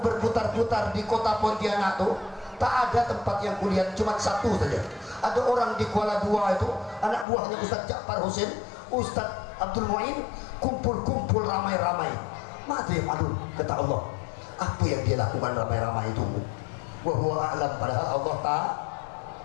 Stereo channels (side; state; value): right; drops out; at 7.2 s